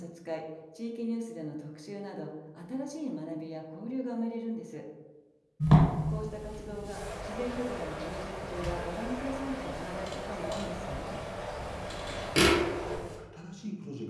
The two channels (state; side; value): identical; both; correlation 1.00